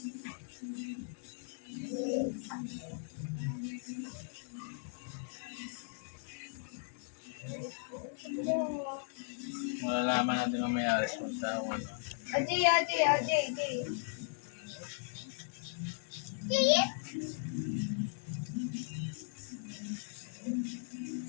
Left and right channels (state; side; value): silent; right; digital silence